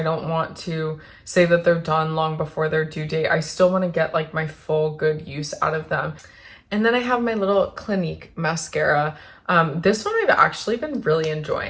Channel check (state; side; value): identical; both; correlation 1.00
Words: don't want to say that they're done long before their due date. I still want to get like my full good use out of them. And then I have my little Clinique mascara. This one I've actually been really